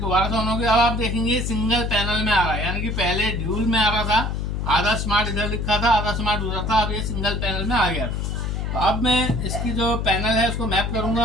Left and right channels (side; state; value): left; noise; hum, 2 dB below the sound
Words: से ऑन हो गया। अब आप देखेंगे सिंगल पैनल में आ रहा है, यानी कि पहले ड्यूल में आ रहा था, आधा स्मार्ट इधर लिखा था, आधा स्मार्ट उधर था। अब ये सिंगल पैनल में आ गया। तो अब मैं इसकी जो पैनल है उसको मैप